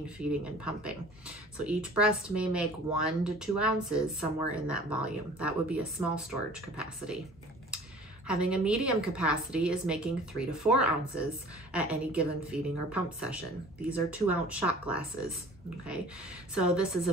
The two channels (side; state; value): both; normal; correlation 0.47